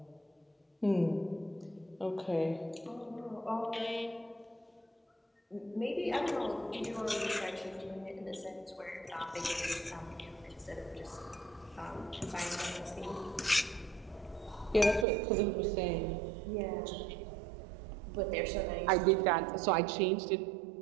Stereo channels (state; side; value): drops out; left; at 15.1 s